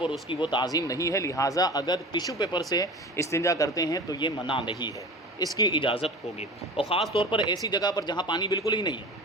اور اس کی وہ تعظیم نہیں ہے، لہٰذا اگر ٹیشو پیپر سے استنجا کرتے ہیں تو یہ منع نہیں ہے، اس کی اجازت ہوگی۔ اور خاص طور پر ایسی جگہ پر جہاں پانی بالکل ہی نہیں ہے،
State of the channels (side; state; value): both; normal; correlation 0.35